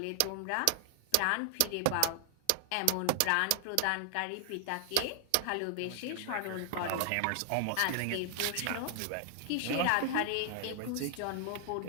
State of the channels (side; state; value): both; different; correlation 0.00